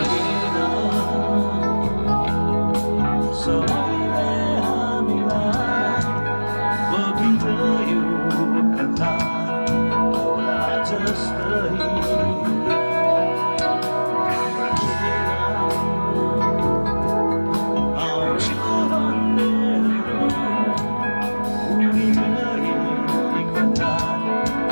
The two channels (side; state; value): both; inverted; correlation -1.00